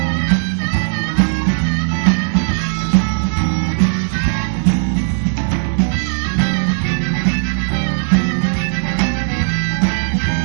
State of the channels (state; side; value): silent; left; digital silence